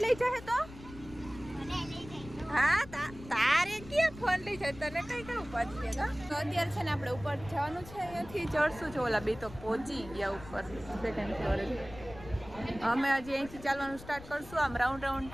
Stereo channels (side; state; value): left; noise; rumble, 16 dB below the sound